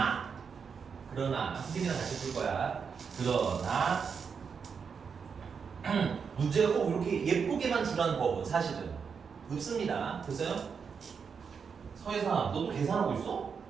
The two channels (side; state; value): left; quieter; 6.2 dB